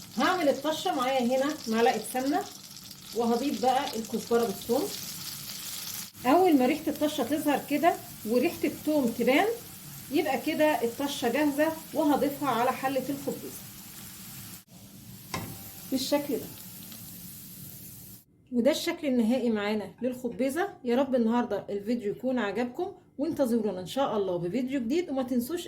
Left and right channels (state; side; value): identical; both; correlation 1.00